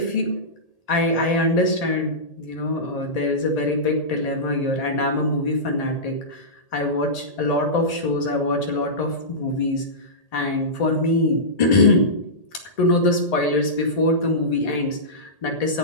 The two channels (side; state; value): right; late; 1.8 ms